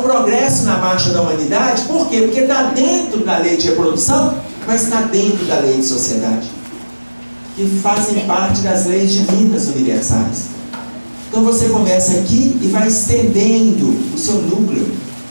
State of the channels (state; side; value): inverted; both; correlation -1.00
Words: progresso na marcha da humanidade. Por quê? Porque está dentro da lei de reprodução, mas está dentro da lei de sociedade, que fazem parte das leis divinas universais. Então você começa aqui e vai estendendo o seu núcleo